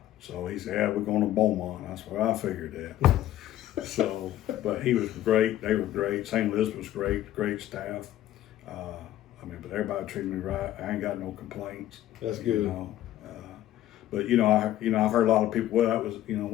so he said, yeah, we're going to Beaumont. I said, well, I figured that. So, but he was great. They were great. St. Elizabeth was great staff. But everybody treated me right. I ain't got no complaints. That's good. You know, but I've heard a lot of people. Well, that was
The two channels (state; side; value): quieter; right; 13.3 dB